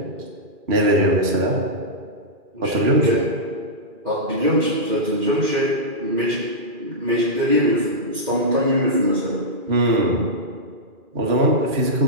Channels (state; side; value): late; left; 2.4 ms